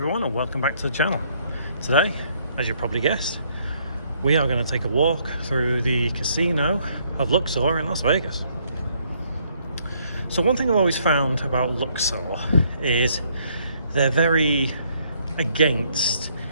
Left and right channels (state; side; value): inverted; both; correlation -0.68